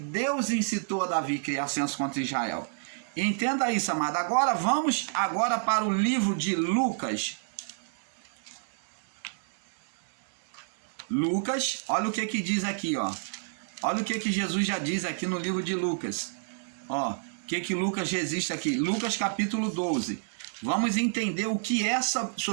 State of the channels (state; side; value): silent; left; digital silence